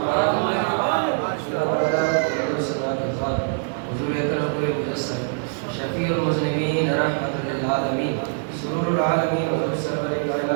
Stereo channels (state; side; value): silent; left; 63 dB below the other